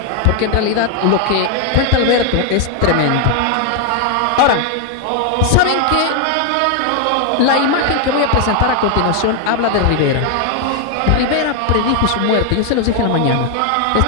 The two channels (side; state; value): both; different; correlation 0.00